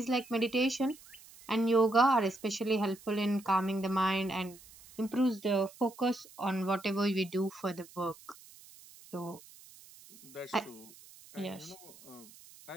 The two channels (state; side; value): noise; right; hiss, 21 dB below the sound